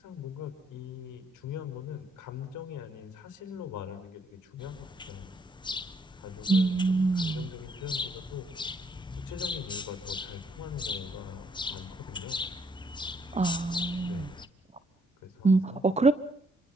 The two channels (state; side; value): normal; both; correlation 0.70